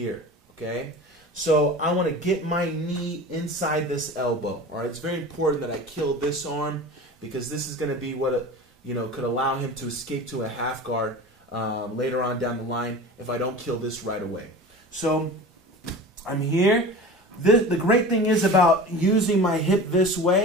okay? So I want to get my knee inside this elbow, all right? It's very important that I kill this arm because this is going to be what, could allow him to escape to a half guard later on down the line if I don't kill this right away. So I'm here. The great thing is about using my hip this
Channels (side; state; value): both; normal; correlation 0.35